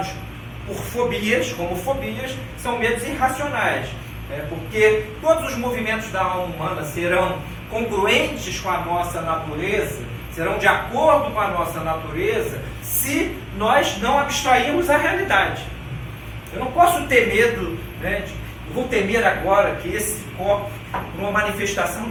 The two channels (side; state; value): both; identical; correlation 1.00